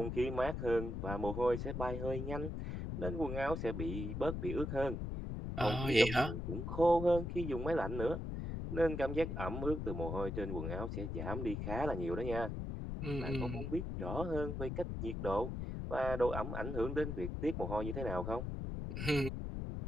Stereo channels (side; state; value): left; noise; rumble, 4 dB below the sound